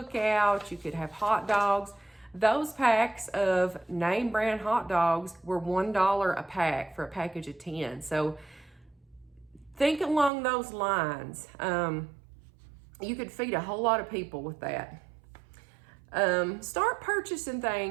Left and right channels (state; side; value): drops out; left; at 10.3 s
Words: You could have hot dogs. Those packs of name brand hot dogs were $1 a pack for a package of 10. So think along those lines. You could feed a whole lot of people with that. Start purchasing